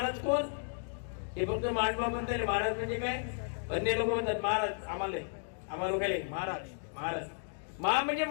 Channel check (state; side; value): silent; right; digital silence